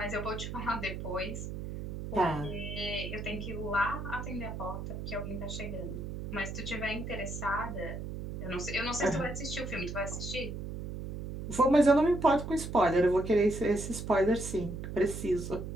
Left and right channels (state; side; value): noise; right; hum, 7 dB below the sound